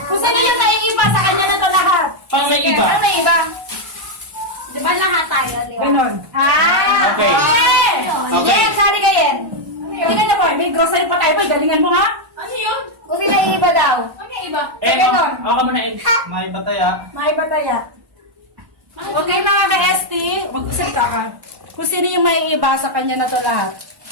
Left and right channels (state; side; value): late; left; 1.1 ms